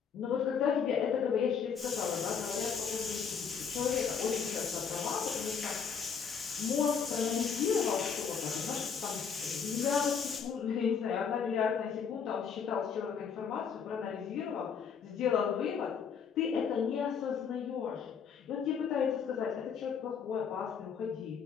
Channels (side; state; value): right; quieter; 6.6 dB